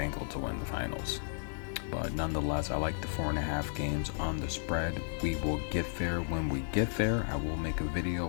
to win the finals. But nonetheless, I like the 4.5 games on the spread. We will get there when we get there. I will make a video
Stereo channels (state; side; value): silent; right; digital silence